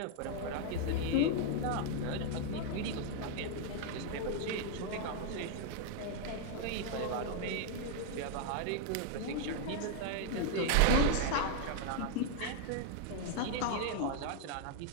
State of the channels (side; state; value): both; different; correlation 0.00